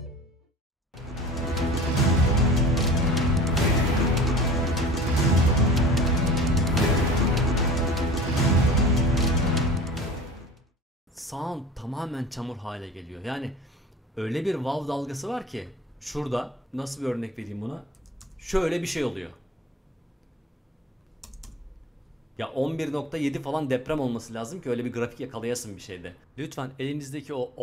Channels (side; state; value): both; normal; correlation 0.41